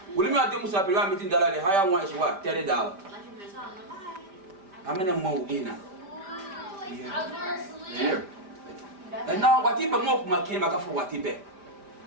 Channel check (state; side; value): late; left; 5.1 ms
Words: will you not do Musa pele meeting dollar the higher one is what? $30. How many more in? Yeah. And now what if more came back for what if?